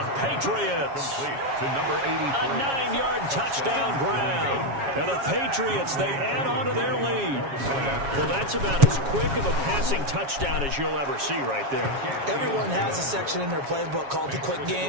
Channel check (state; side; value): late; left; 7.3 ms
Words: Patriots. Complete to number 83. A 9-yard touchdown ground. And the Patriots, they add on to their lead. Well, that's about as quick of a passing touchdown as you'll ever see right there. Everyone has a section in their playbook called the quick